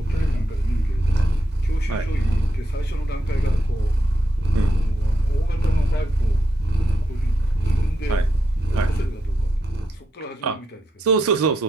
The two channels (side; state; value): both; normal; correlation 0.83